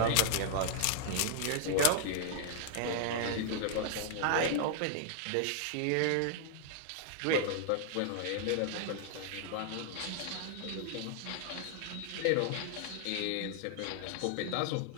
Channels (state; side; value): different; both; correlation -0.01